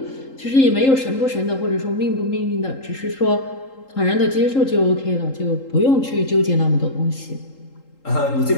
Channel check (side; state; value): right; late; 3.8 ms